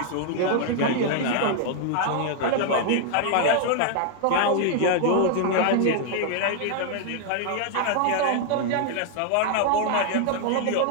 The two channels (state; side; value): different; both; correlation 0.00